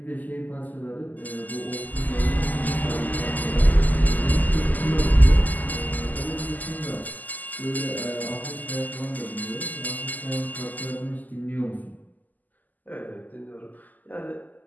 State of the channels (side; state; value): right; late; 0.082 ms